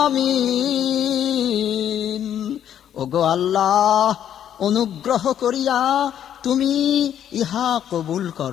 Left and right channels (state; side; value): quieter; right; 10.0 dB